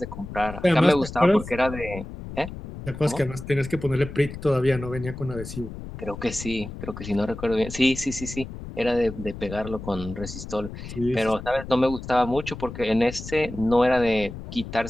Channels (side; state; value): left; noise; rumble, 11 dB below the sound